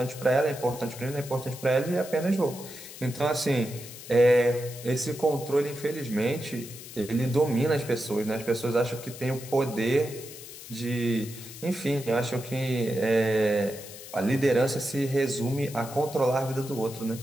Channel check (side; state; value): left; noise; hiss, 14 dB below the sound